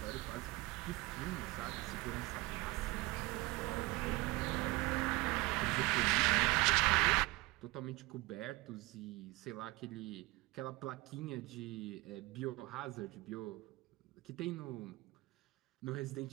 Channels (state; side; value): quieter; left; 21.7 dB